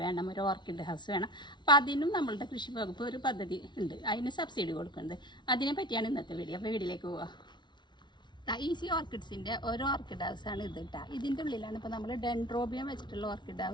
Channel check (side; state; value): right; late; 0.22 ms